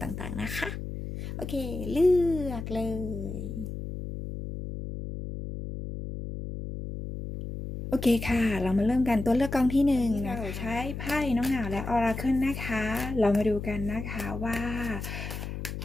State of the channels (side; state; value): left; noise; hum, 7 dB below the sound